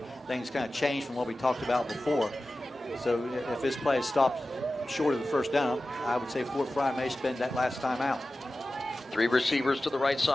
things kind of changed from what we talked about before. So if this play is stopped short of the 1st down, I would say Fort Frye may spend that last time out. 3 receivers to the right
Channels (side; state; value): both; normal; correlation 0.95